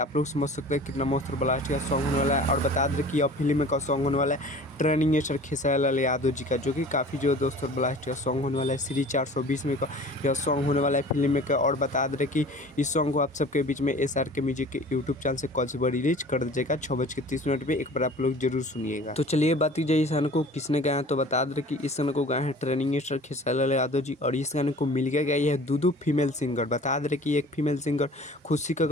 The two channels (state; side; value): normal; both; correlation 0.44